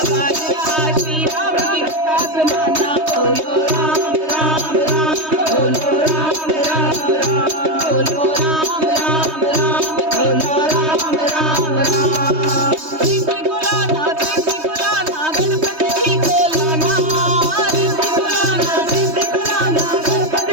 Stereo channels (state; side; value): late; left; 3.2 ms